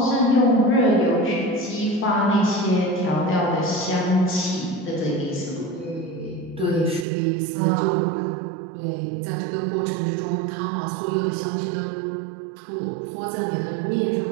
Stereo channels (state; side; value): drops out; left; at 7.1 s